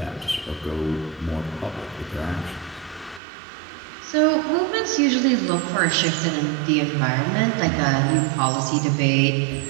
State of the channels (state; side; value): drops out; left; at 3.2 s